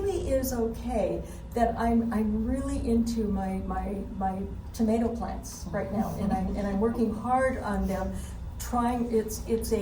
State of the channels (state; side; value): identical; both; correlation 1.00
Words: is okay that I'm really into my tomato plants right now, and I'm working hard on them.